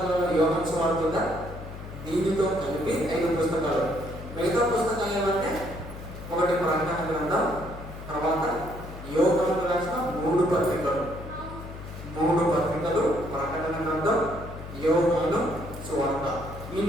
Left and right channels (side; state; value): left; noise; hum, 12 dB below the sound